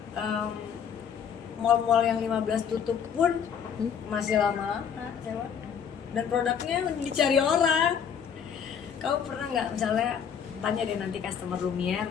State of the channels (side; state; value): right; quieter; 7.6 dB